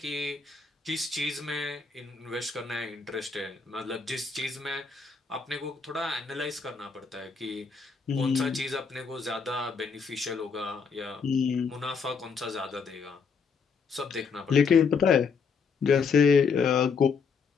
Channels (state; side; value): quieter; right; 5.4 dB